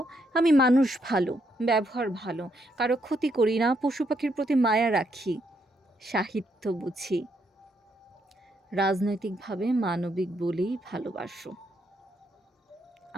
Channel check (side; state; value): both; normal; correlation 0.76